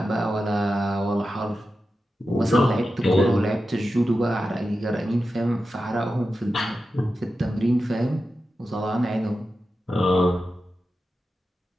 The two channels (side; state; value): both; normal; correlation 0.91